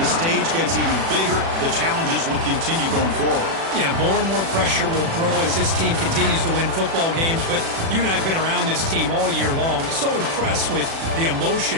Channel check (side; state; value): left; late; 36 ms